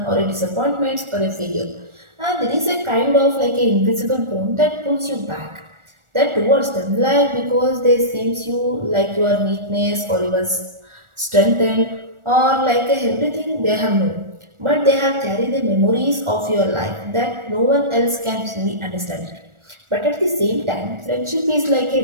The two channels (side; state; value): left; late; 1.4 ms